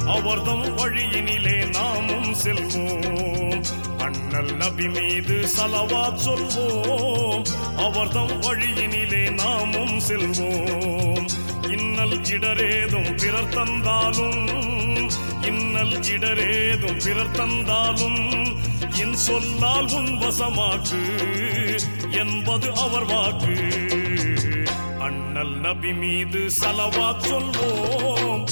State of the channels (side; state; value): both; inverted; correlation -1.00